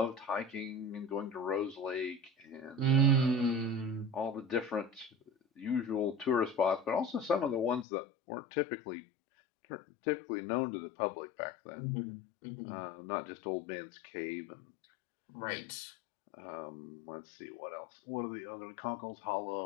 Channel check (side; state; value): right; drops out; at 7.9 s